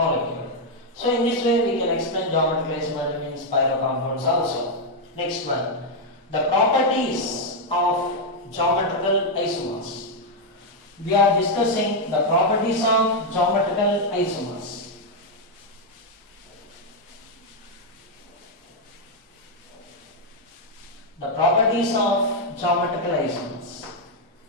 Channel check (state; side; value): normal; both; correlation 0.00